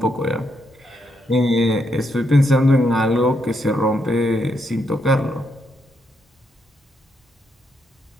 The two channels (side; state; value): both; normal; correlation 0.78